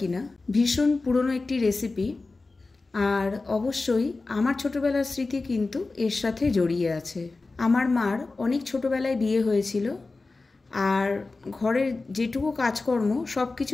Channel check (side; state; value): right; quieter; 3.6 dB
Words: না। ভীষণ পুরনো একটি রেসিপি, আর অবশ্যই আমার ছোটোবেলার স্মৃতি কিন্তু এর সাথে জড়িয়ে আছে। আমার মার অনেক ছোটোবেলায় বিয়ে হয়েছিল, আর ঘরের যেটুকু কাজকর্ম সব